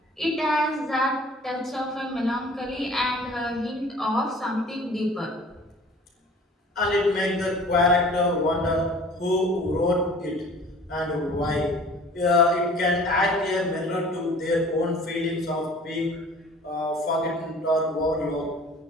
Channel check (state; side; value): normal; both; correlation 0.47